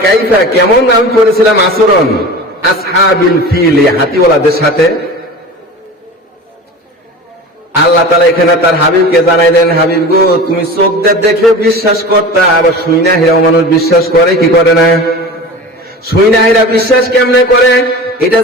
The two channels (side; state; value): both; normal; correlation 0.34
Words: কাইফা, কেমন আমি করেছিলাম আচরণ আসহাবিল ফিল, হাতিওয়ালাদের সাথে। আল্লাহ তাআলা এখানে তার হাবিবকে জানাইলেন, হাবিব গো, তুমি চোখ দিয়ে দেখে বিশ্বাস করতা, আবার শুইনা হেরাও মানুষ বিশ্বাস করে কি করে না? শুইনা হেরা বিশ্বাস কেমনে করে? এটা